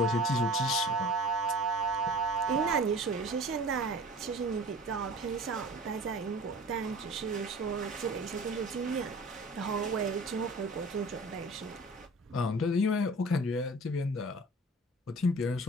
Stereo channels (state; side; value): normal; both; correlation 0.43